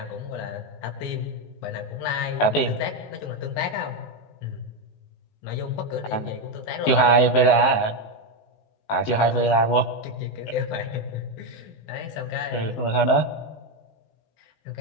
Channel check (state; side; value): late; right; 19 ms